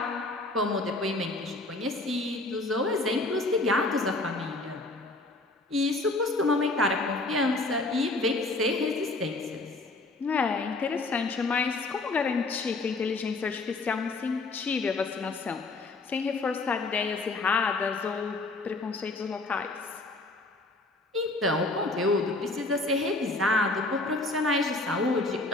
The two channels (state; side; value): quieter; right; 3.1 dB